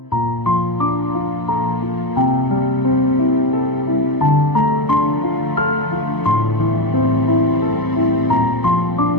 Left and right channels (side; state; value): right; late; 0.99 ms